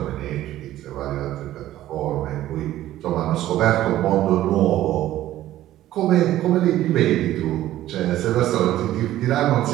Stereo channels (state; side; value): quieter; left; 13.9 dB